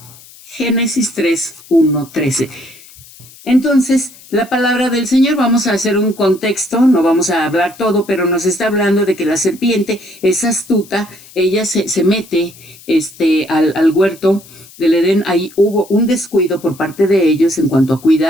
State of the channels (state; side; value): noise; left; hiss, 22 dB below the sound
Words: Génesis 3, 1, 13. Entonces, la palabra del Señor, vamos a hacer un contexto, no vamos a hablar todo, pero nos está hablando de que la serpiente es astuta, ella se mete al huerto del Edén. Ahí hubo un descuido por parte de ellos en cuanto a